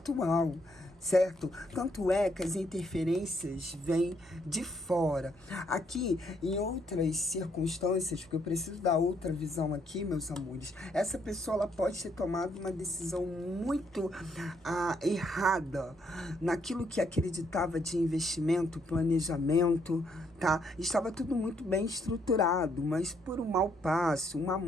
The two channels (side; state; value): both; normal; correlation 0.72